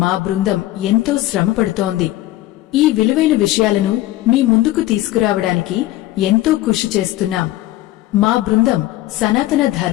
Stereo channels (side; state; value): right; quieter; 16.1 dB